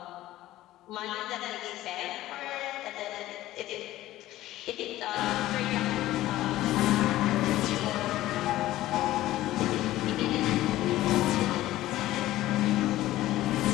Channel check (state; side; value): quieter; right; 15.4 dB